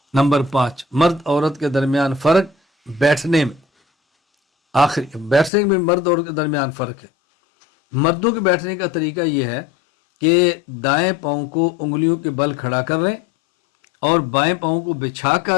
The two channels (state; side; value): drops out; right; at 5.5 s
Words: نمبر 5، مرد عورت کے درمیان فرق بیٹھنے میں، آخری بیٹھنے میں مرد عورت کے درمیان فرق ہے۔ مردوں کے بیٹھنے کا طریقہ یہ ہے کہ دائیں پاؤں کو انگلیوں کے بل کھڑا کر لیں اور بائیں پاؤں کو بچھا